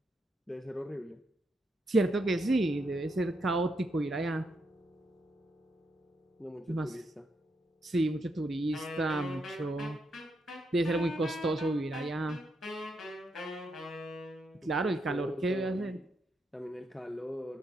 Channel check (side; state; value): both; normal; correlation 0.80